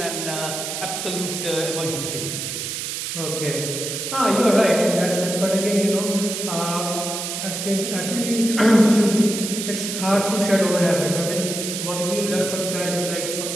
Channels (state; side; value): noise; right; hiss, 4 dB below the sound